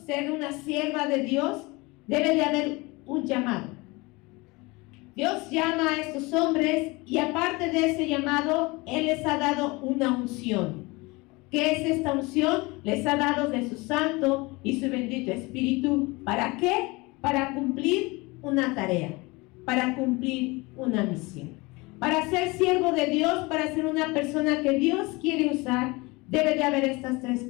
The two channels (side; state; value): right; quieter; 24.4 dB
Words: ser una sierva de Dios, debe de haber un llamado. Dios llama a estos hombres y aparte de ese llamado, Él les ha dado una unción. ¿Qué es esta unción? Les ha dado de su Santo y su bendito Espíritu. ¿Para qué? Para cumplir una tarea, para cumplir una misión. Para ser siervo de Dios, para ser una persona que Dios quiere usar, debe de haber estas tres